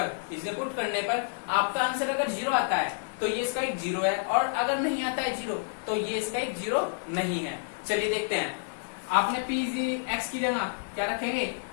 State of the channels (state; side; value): silent; right; digital silence